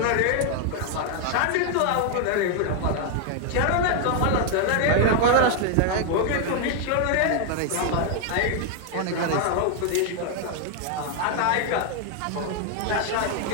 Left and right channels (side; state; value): both; different; correlation 0.00